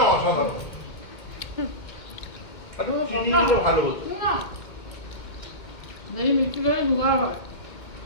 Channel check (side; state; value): right; late; 2.2 ms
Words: অসাধারণ। একটু চিনি দিলে ভালো হতো। না দেখি মিষ্টি করে জোগাড় হয়।